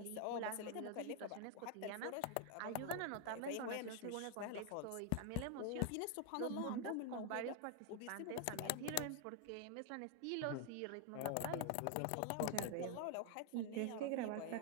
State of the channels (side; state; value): both; different; correlation 0.01